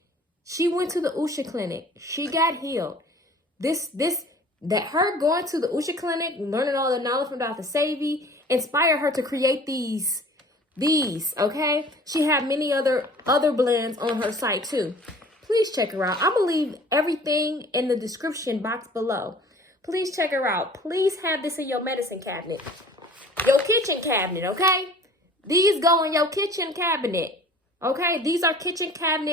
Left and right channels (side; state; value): both; normal; correlation 0.48